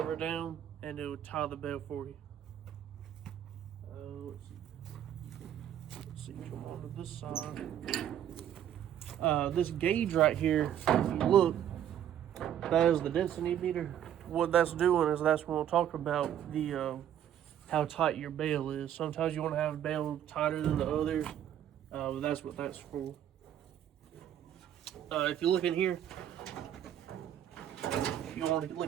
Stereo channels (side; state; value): left; quieter; 10.5 dB